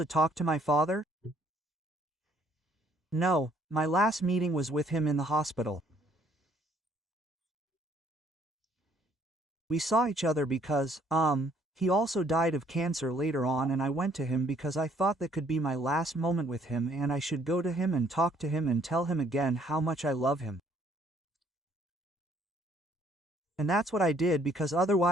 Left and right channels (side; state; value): both; normal; correlation 0.64